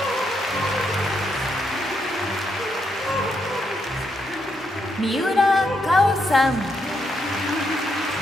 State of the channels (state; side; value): normal; both; correlation 0.79